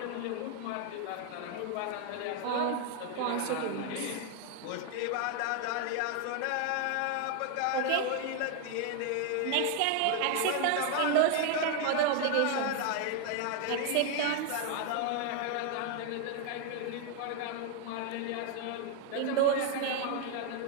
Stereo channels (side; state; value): both; different; correlation 0.00